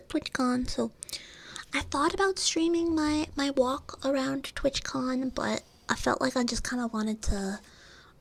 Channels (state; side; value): identical; both; correlation 1.00